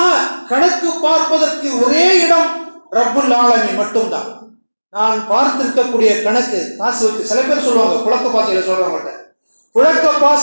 கணக்கு பார்ப்பதற்கு ஒரே இடம் ரப்புல் ஆலமீன் மட்டும்தான். நான் பார்த்திருக்கக்கூடிய கணக்கு காசு வச்சு, சில பேர் சொல்லுவாங்க புழக்க பாசைகளை சொல்றவங்கள்ட்ட, புழக்க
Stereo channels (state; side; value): inverted; both; correlation -1.00